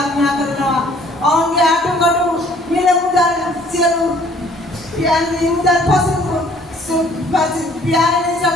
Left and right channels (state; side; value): normal; both; correlation 0.57